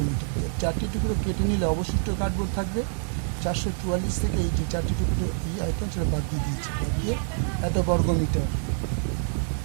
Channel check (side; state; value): left; silent; digital silence